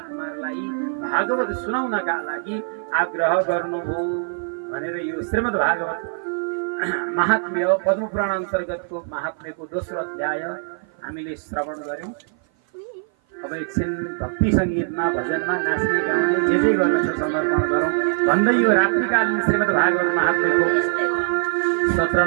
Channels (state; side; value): silent; left; 56 dB below the other